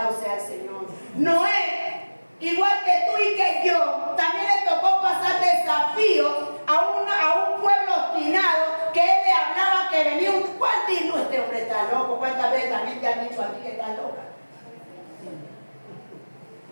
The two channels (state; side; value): inverted; both; correlation -1.00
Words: sea el Señor. Noé, igual que tú y que yo, también le tocó pasar desafíos a un pueblo obstinado que él le hablaba que venía un... ¿Cuál dijo este hombre está loco? ¿Cuántas veces también te han dicho a ti que estás loca?